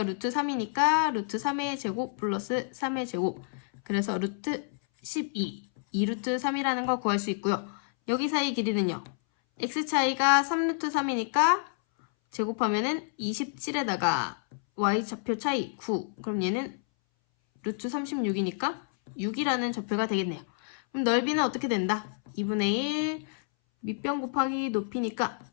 루트 3이니까 루트 3의 제곱 플러스 3의 제곱 그래서 루트 12 2루트 3이라는 거 구할 수 있고요. 여기 사이의 길이는요. x 차이가 3루트 3이니까 제곱하면은 27에다가 y좌표 차이 9 그럼 얘는 루트 36이니까 6이라는 좌표가 되겠네요. 그럼 넓이는 어떻게 된다? 2분의 1 밑변 곱하기 높이니까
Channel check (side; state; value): right; silent; 59 dB below the other